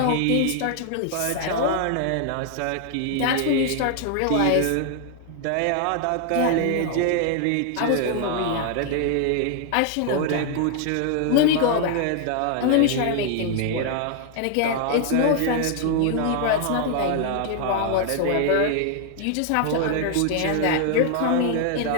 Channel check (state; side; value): different; both; correlation 0.00